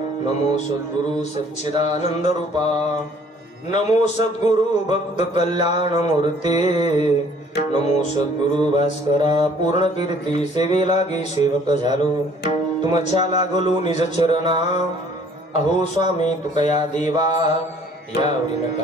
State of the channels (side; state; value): both; normal; correlation 0.57